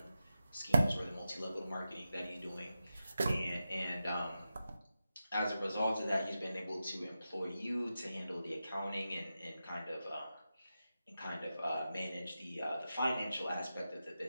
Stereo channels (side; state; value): both; inverted; correlation -0.91